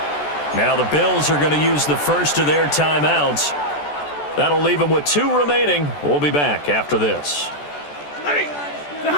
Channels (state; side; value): late; right; 14 ms